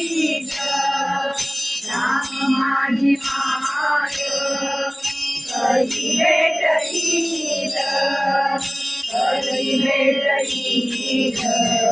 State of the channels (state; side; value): identical; both; correlation 1.00